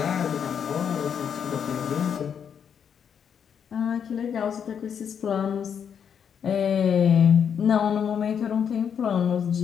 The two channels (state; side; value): quieter; right; 7.7 dB